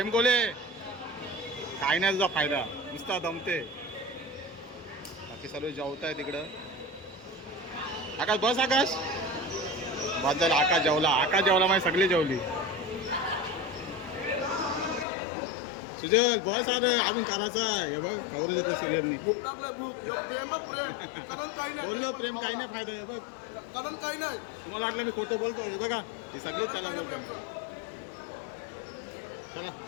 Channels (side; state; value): right; drops out; at 15.1 s